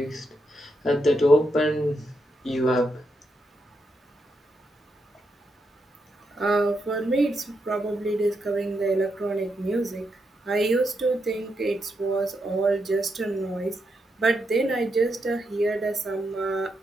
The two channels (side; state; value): both; normal; correlation 0.83